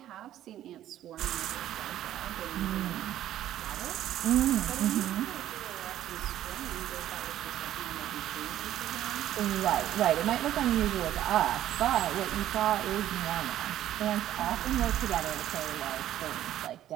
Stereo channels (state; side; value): quieter; left; 12.4 dB